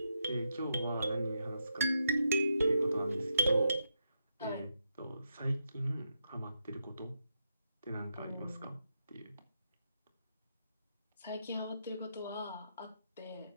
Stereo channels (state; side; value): inverted; both; correlation -0.82